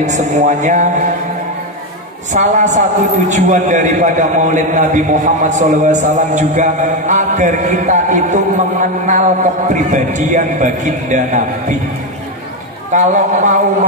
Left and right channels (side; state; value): both; normal; correlation 0.08